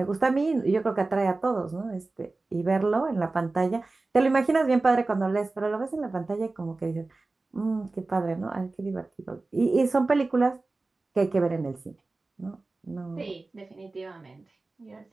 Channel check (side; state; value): left; quieter; 3.4 dB